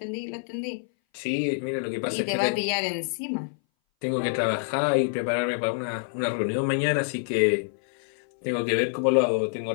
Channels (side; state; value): right; silent; 59 dB below the other